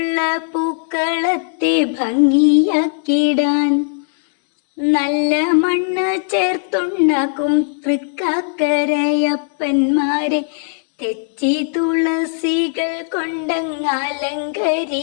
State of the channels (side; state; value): right; silent; digital silence